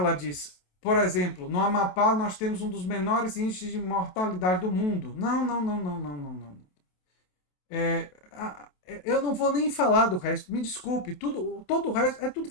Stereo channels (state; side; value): late; right; 28 ms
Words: disse. Por exemplo, no Amapá nós temos um dos menores índices de mortalidade do mundo. Não. Eu não vou nem falar do resto. Me desculpe. Todo o resto é tudo